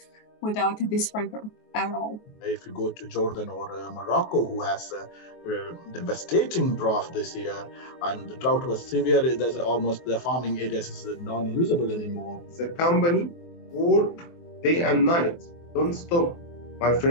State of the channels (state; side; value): late; right; 23 ms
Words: without this river at all. If you go to Jordan or Morocco, who has a devastating drought this year, and the drought was severe, there's almost the farming areas is non-usable anymore. The company work day and night, don't stop. My